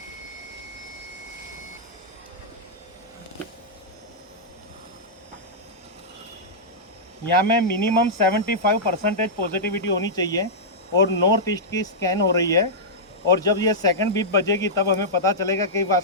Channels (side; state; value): both; normal; correlation -0.11